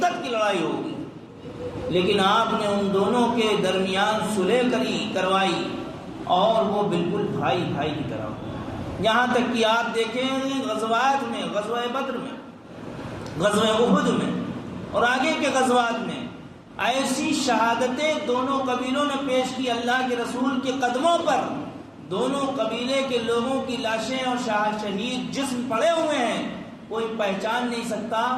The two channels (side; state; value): both; identical; correlation 1.00